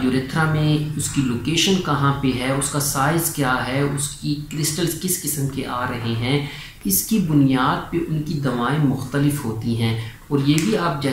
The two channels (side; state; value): both; identical; correlation 1.00